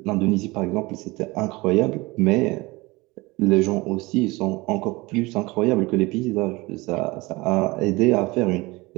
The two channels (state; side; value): quieter; left; 22.6 dB